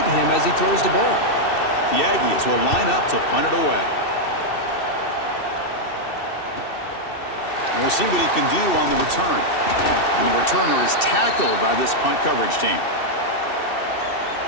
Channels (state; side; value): late; right; 2.7 ms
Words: him as he throws the ball. The Aggies will line up to punt it away. And we'll see what he can do on the return. And the returner is tackled by this punt coverage team.